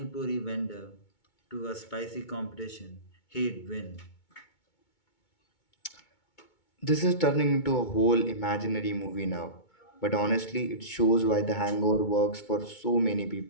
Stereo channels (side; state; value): right; late; 2.2 ms